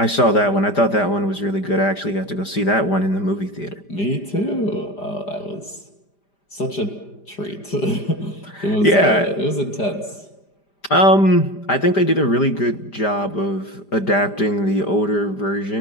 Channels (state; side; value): late; right; 5.0 ms